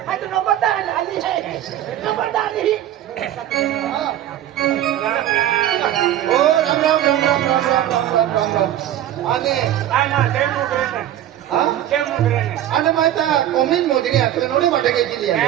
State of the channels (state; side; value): quieter; left; 12.1 dB